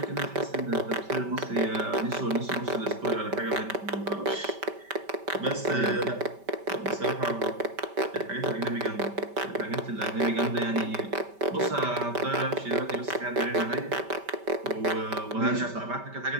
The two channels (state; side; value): late; left; 5.1 ms